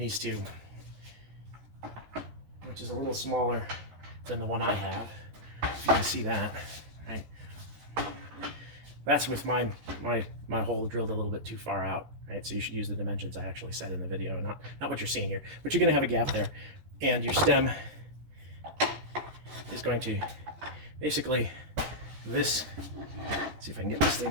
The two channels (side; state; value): left; late; 14 ms